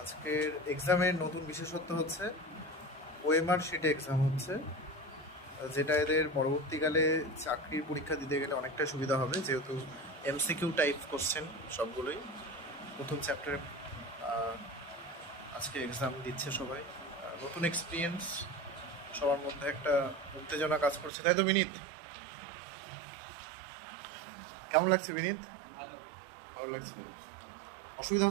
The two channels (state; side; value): drops out; left; at 21.1 s